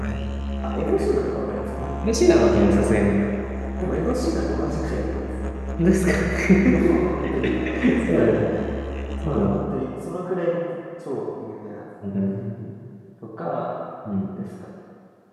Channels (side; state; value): both; identical; correlation 1.00